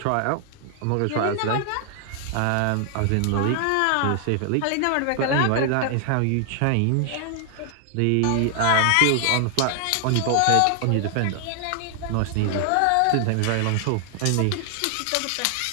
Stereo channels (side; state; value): both; different; correlation 0.00